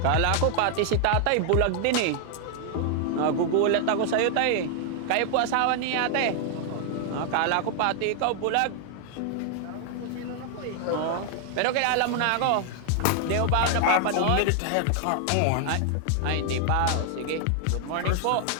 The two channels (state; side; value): different; both; correlation 0.00